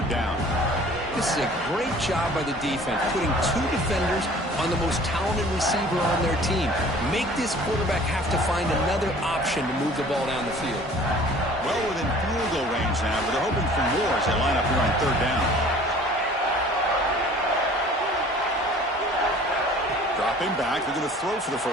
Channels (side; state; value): both; normal; correlation 0.49